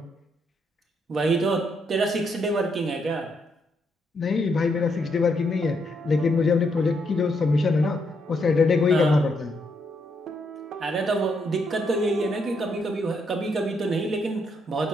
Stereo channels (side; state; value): both; normal; correlation 0.76